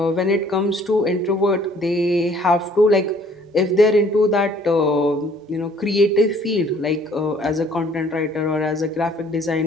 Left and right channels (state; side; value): normal; both; correlation 0.58